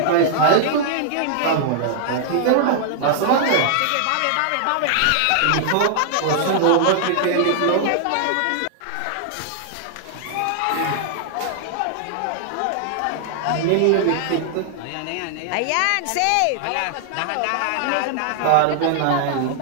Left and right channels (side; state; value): both; different; correlation -0.01